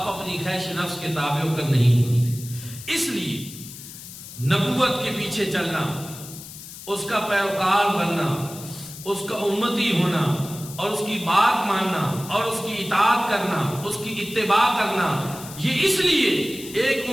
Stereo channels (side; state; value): left; noise; hiss, 14 dB below the sound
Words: اپنی خواہش نفس کے تابع ہو کر نہیں بولتے۔ اس لیے نبوت کے پیچھے چلنا، اس کا پیروکار بننا، اس کا امتی ہونا اور اس کی بات ماننا اور اس کی اطاعت کرنا، اس کی اتباع کرنا، یہ اس لیے ایک